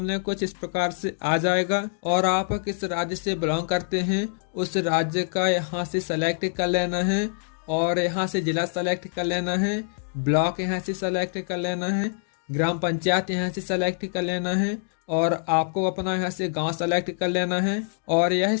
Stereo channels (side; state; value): right; silent; digital silence